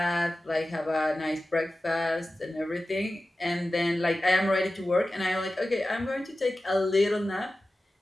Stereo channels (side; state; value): both; normal; correlation 0.95